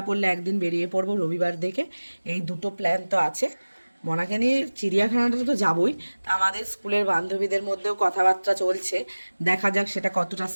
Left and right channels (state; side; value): inverted; both; correlation -1.00